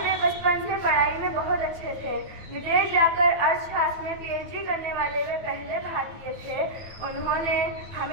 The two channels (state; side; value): late; left; 9.4 ms